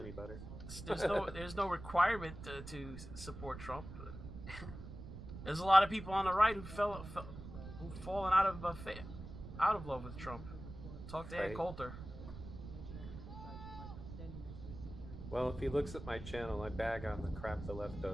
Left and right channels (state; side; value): noise; right; rumble, 11 dB below the sound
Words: better. There's no requirement to support Trump. There's a lot of people on the right who've fallen out of love with Trump. Talk to Ed Coulter. Well, if he looks at my channel, I bag on the crap the left